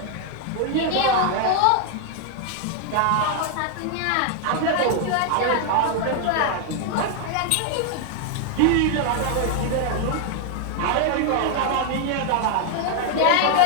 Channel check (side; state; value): both; different; correlation 0.00